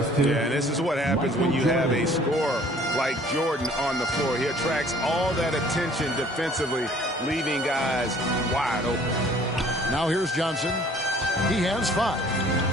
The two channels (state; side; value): normal; both; correlation 0.55